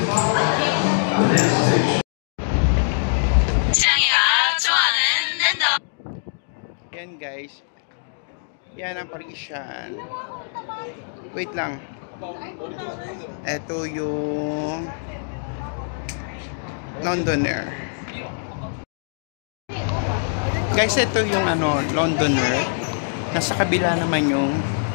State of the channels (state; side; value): silent; right; digital silence